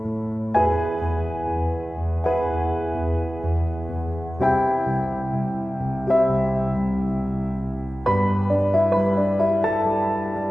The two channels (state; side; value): normal; both; correlation 0.95